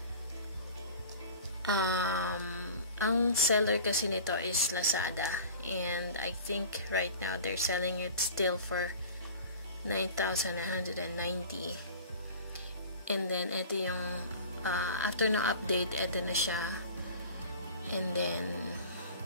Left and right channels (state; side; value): inverted; both; correlation -0.40